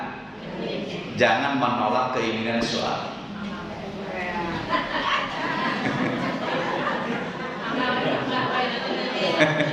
Jangan menolak keinginan suami.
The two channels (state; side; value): identical; both; correlation 1.00